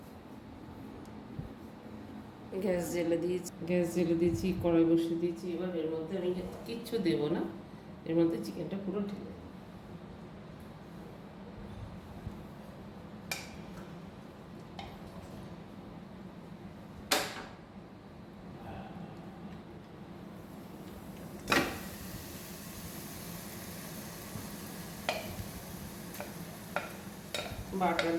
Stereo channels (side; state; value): both; identical; correlation 1.00